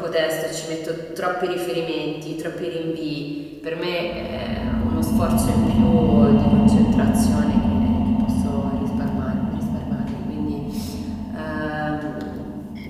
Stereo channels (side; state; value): both; identical; correlation 1.00